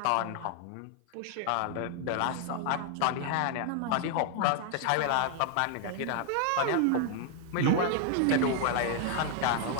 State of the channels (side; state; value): both; different; correlation 0.00